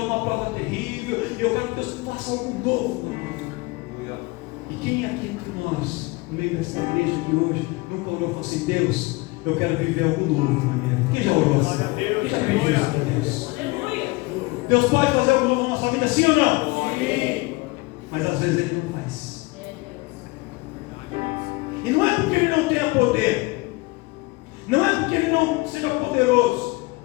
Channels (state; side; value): quieter; right; 24.0 dB